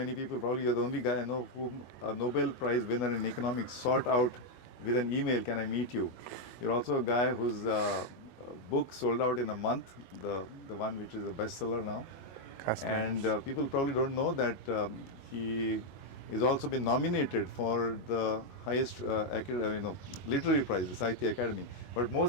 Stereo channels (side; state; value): right; late; 22 ms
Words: people, probably you're the only guy I know whom a Nobel Prize winner in economics sought out with an email, can I meet you? You're also a guy whose book sold out in a month, the one which is a bestseller now. And people probably don't know that he is also been nominated for the highest literary prize, the Sahitya Academy. But